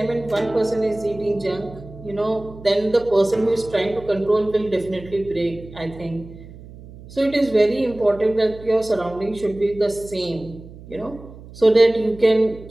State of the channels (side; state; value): right; noise; hum, 18 dB below the sound